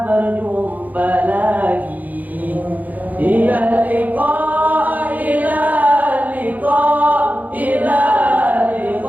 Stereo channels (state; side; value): late; left; 0.080 ms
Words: berjumpa lagi. Ila liqa, ila liqa, ila